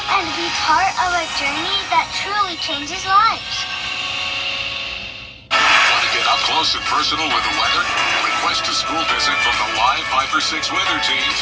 and be part of a journey that truly changes lives. Want to get up close and personal with the weather? Request a school visit from the Live Viper 6 weather team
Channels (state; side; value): identical; both; correlation 1.00